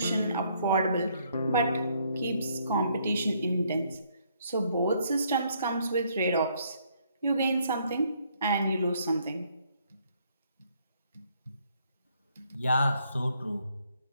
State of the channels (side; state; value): both; inverted; correlation -0.68